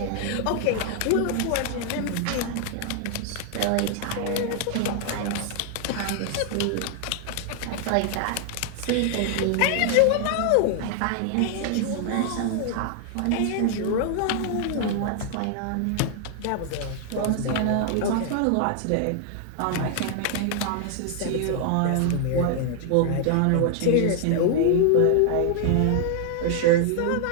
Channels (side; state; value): both; different; correlation 0.00